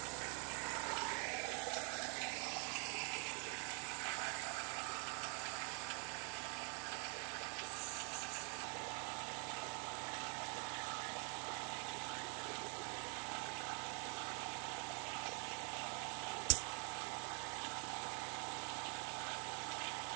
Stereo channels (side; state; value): left; quieter; 37.7 dB